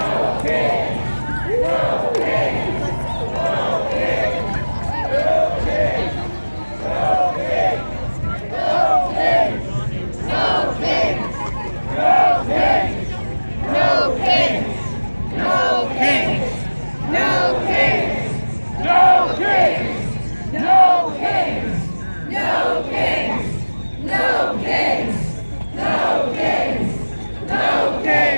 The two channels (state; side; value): inverted; both; correlation -1.00